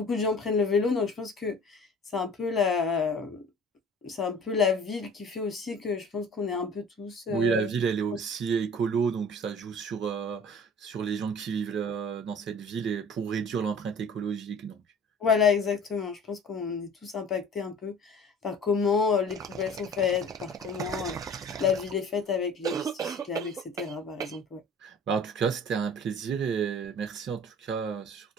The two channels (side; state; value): both; normal; correlation 0.46